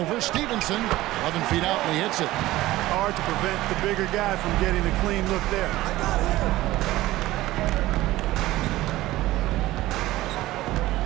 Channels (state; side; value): quieter; left; 16.9 dB